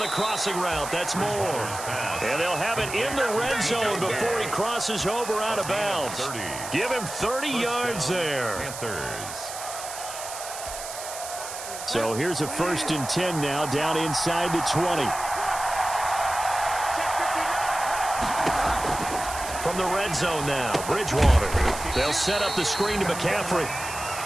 crossing route. That's more. And they'll have it in the red zone before he crosses over out of bounds. Give him 30 yards there. Panthers. So here's a 1st and 10 now, down inside the 20. From the red zone now, Bridgewater. They'll set up the screen to McCaffrey.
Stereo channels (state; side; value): noise; right; hiss, 9 dB below the sound